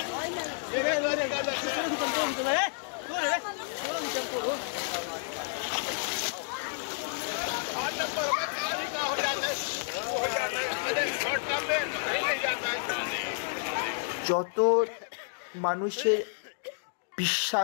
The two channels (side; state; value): right; silent; digital silence